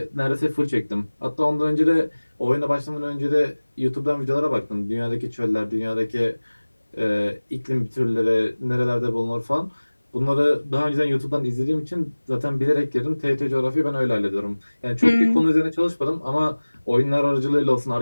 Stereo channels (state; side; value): inverted; both; correlation -1.00